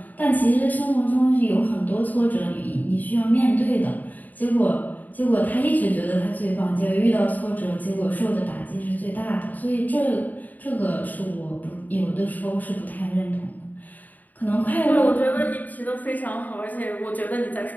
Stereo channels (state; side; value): late; right; 0.081 ms